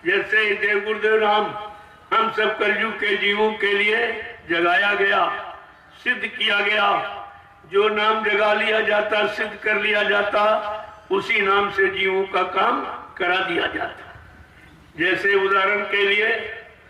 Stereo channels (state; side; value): identical; both; correlation 1.00